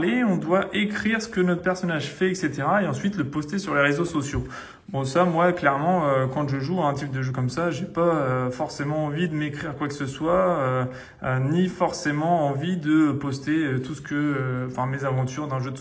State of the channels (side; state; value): both; identical; correlation 1.00